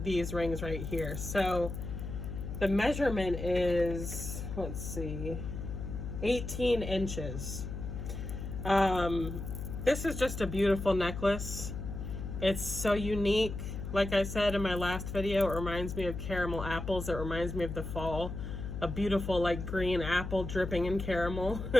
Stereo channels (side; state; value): left; noise; hum, 6 dB below the sound